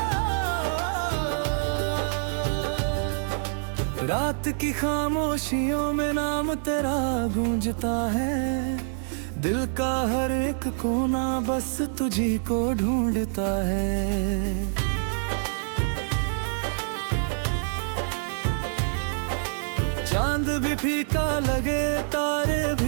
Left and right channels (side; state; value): left; silent; 61 dB below the other